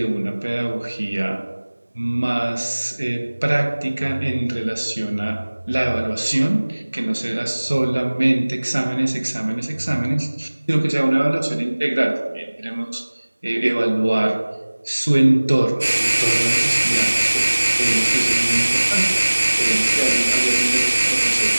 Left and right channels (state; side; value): inverted; both; correlation -1.00